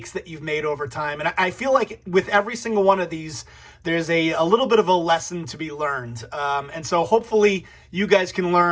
that you've made over time. And I feel like with every single one of these, there's a little bit of a lesson to be learned. And so hopefully you guys can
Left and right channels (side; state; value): both; identical; correlation 1.00